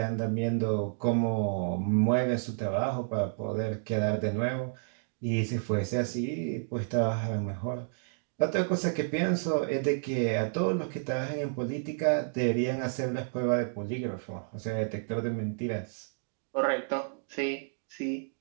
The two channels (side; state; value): left; silent; digital silence